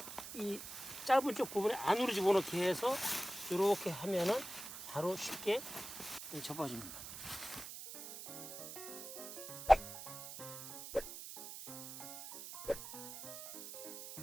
이 짧은 쪽 부분에 안으로 집어넣게 해서 이렇게 하면은 바로 쉽게 접어집니다.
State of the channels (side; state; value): right; noise; hiss, 10 dB below the sound